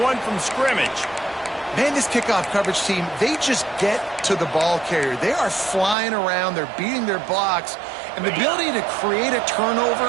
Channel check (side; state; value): left; drops out; at 6.0 s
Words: one from scrimmage. Man, this kickoff coverage team, they just get to the ball carrier. They are flying around. They're beating their blocks. And the ability to create a